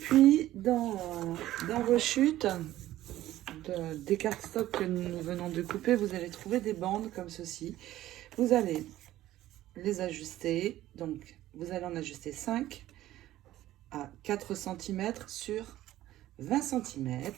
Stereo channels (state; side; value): quieter; left; 14.5 dB